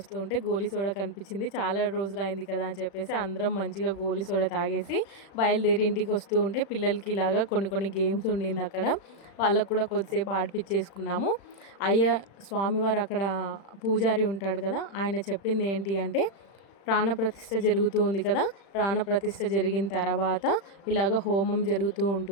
ఉంటే గోలీ సోడా కనిపించింది. చాలా రోజులు అయింది కదా అని చెప్పేసి అందరం మంచిగా గోలీ సోడా తాగేసి బయలుదేరి ఇంటికి వస్తూ ఉంటే పిల్లలకి ఇలాగా కొన్ని గేమ్స్ ఉండింది అక్కడ. వాళ్ళకు కూడా కొద్దిసేపు ఆడిపించేసుకున్నాము. స్వామివారు అక్కడ పూజారి ఉంటాడు కదా, ఆయన చెప్పింది ఏంటి అంటే ప్రాణప్రతిష్ఠ జరుగుతూ ఉంది కదా, ప్రాణప్రతిష్ఠ జరిగిన తర్వాత ఇలాగ హోమం జరుగుతూ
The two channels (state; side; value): late; right; 36 ms